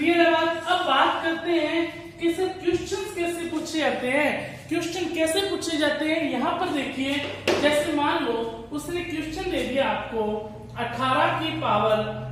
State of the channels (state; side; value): identical; both; correlation 1.00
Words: है बात। अब बात करते हैं कि सर क्वेश्चंस कैसे पूछे जाते हैं, क्वेश्चन कैसे पूछे जाते हैं। यहाँ पर देखिए, जैसे मान लो उसने क्वेश्चन दे दिया आपको 18 की पावर